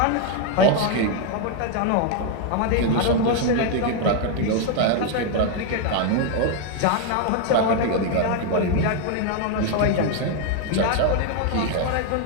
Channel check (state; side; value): different; both; correlation 0.01